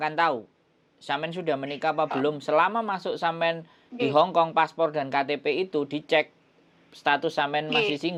tahu sampean sudah menikah apa belum selama masuk sampean di Hongkong, paspor dan KTP itu dicek status sampean masih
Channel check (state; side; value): identical; both; correlation 1.00